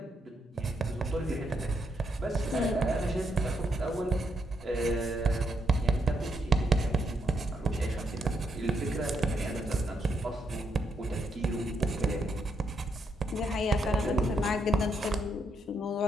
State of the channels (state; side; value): normal; both; correlation 0.78